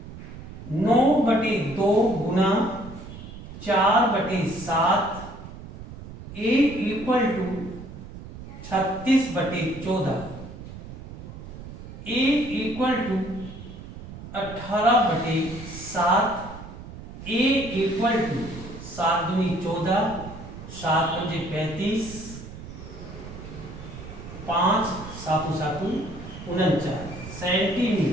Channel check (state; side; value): noise; right; rumble, 13 dB below the sound